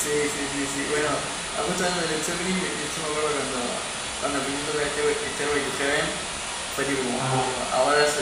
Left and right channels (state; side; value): identical; both; correlation 1.00